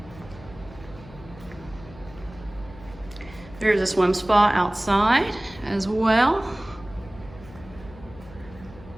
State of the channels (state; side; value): noise; left; hum, 18 dB below the sound